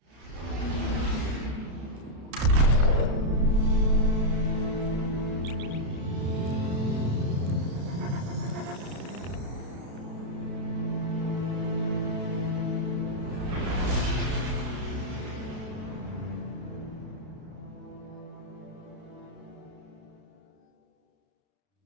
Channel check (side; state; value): left; late; 32 ms